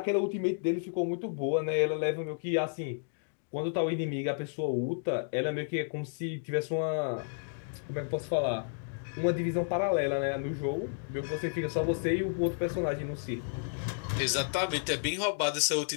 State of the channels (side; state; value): right; silent; digital silence